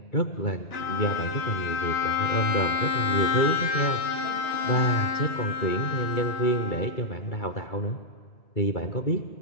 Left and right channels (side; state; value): right; late; 2.3 ms